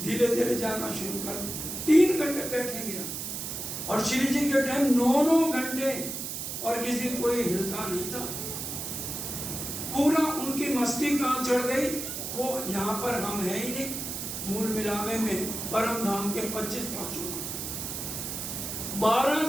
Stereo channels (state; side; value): noise; right; hiss, 5 dB below the sound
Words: धीरे जाना शुरू कर। 3 घंटे बैठेंगे हम, और श्री जी के टाइम 9 घंटे, और किसी कोई हिलता नहीं था। पूरा उनकी मस्ती कहाँ चढ़ गई, वो यहाँ पर हम है ही नहीं। मूल मिलावे में परम धाम के 25 पांचों